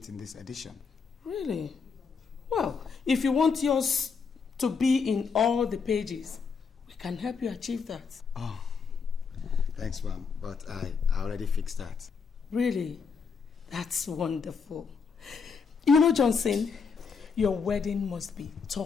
in this edition. Really? Well, if you want yours to be in all the pages, we can help you achieve that. Oh, thanks, ma'am. But I already fixed that. Really? That's wonderful. You know, Johnson, your wedding must be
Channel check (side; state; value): right; quieter; 5.6 dB